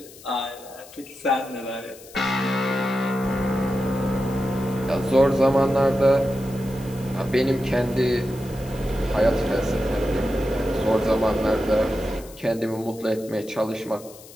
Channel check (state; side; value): noise; left; hiss, 20 dB below the sound